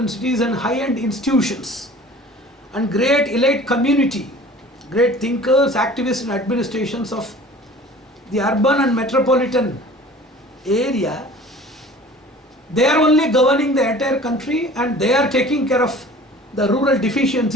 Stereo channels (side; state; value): both; normal; correlation 0.45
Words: cities and high-end institutions and great elite community, great thinkers, activists and administrations of the urban and metropolitan area, they are only governing the entire country and they are taking care of the rural